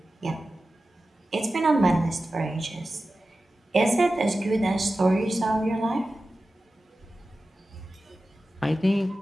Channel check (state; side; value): normal; both; correlation 0.94